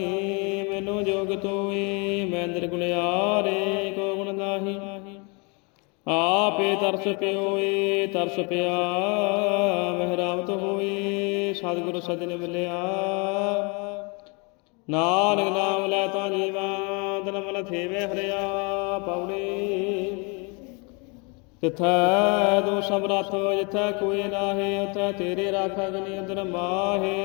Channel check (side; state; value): right; quieter; 31.8 dB